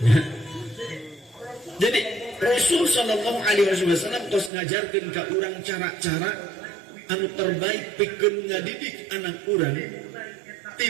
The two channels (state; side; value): drops out; left; at 4.5 s